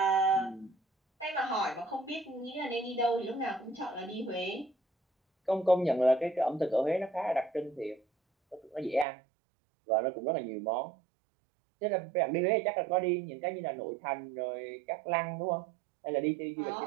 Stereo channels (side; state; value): left; drops out; at 9.1 s